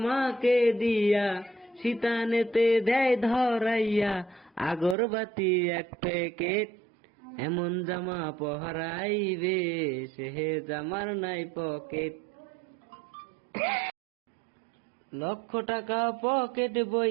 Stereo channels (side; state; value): left; drops out; at 5.0 s